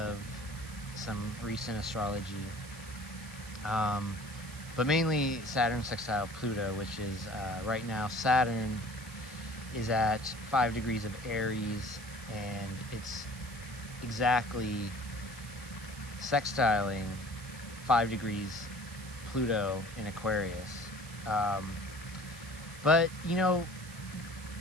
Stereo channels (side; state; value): right; noise; hiss, 16 dB below the sound